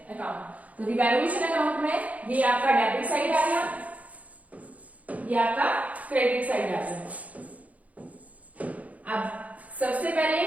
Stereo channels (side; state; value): left; late; 0.071 ms